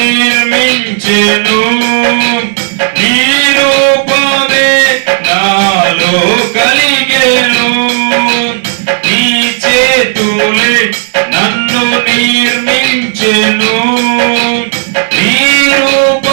నీ రూపమే నాలో కలిగెను నీ చేతులే నన్ను నిర్మించెను నీ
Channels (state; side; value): silent; left; 69 dB below the other